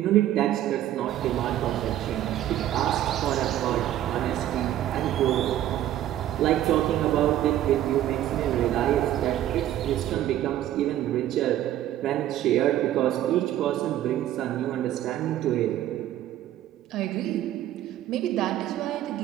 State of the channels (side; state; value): left; quieter; 12.6 dB